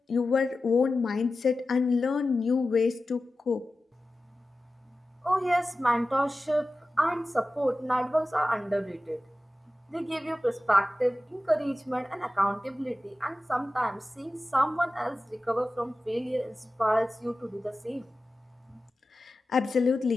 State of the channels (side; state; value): both; normal; correlation 0.94